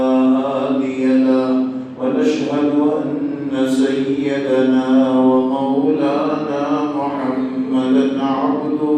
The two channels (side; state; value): both; identical; correlation 1.00